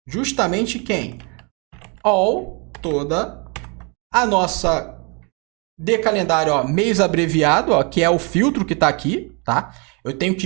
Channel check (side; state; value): left; quieter; 32.9 dB